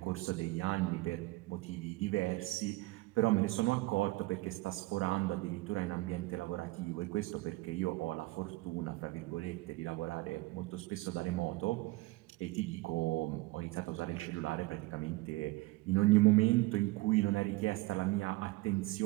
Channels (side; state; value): left; quieter; 21.1 dB